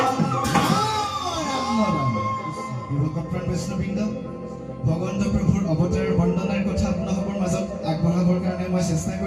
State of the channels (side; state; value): both; identical; correlation 1.00